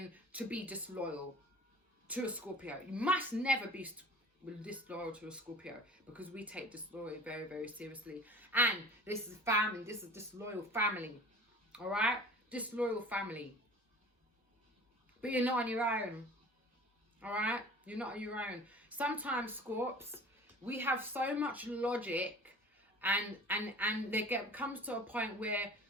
to be disloyal to a Scorpio. You must never be disloyal to a Scorpio because we take disloyalty very, very seriously. And this is family. This is disloyal family. All right? Disloyal family. But you're not on your own. All right? You're not on your own. Sometimes, Scorps, we have so much logic and comes to a point where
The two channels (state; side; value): normal; both; correlation 0.43